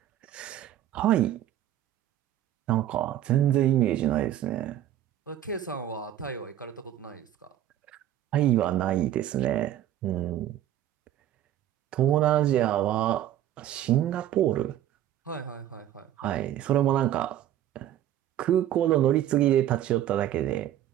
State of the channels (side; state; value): left; quieter; 11.9 dB